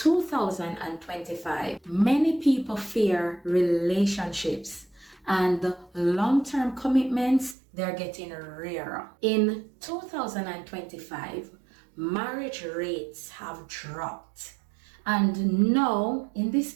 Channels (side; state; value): left; drops out; at 7.6 s